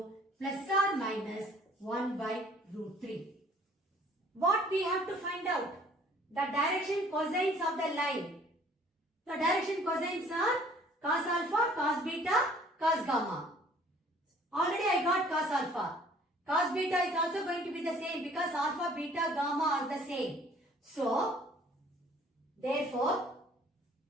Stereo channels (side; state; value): both; normal; correlation 0.55